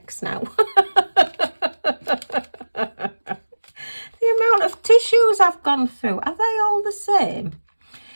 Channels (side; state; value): both; inverted; correlation -1.00